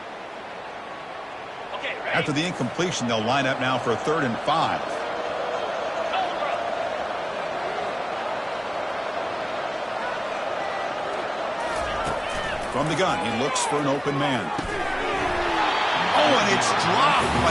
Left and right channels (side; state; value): both; identical; correlation 1.00